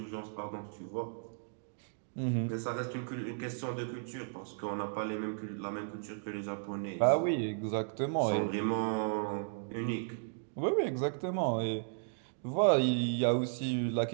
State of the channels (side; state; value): left; silent; digital silence